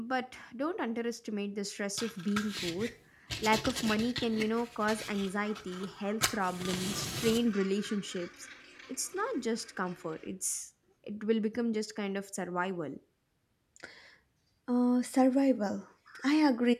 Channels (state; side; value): identical; both; correlation 1.00